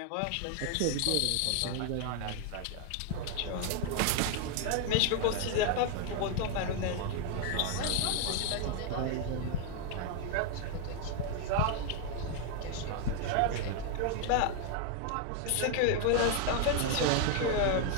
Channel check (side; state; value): both; different; correlation 0.00